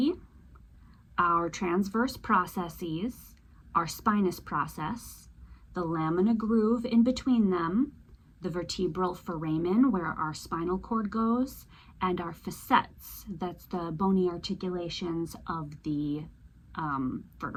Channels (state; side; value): identical; both; correlation 1.00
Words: our transverse processes, our spinous process, the lamina groove in between them, the vertebral foramen where our spinal cord goes, and our facets, that's the bony articulations of the